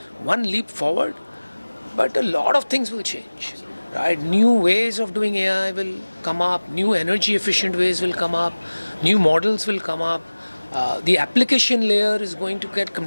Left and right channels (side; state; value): both; inverted; correlation -1.00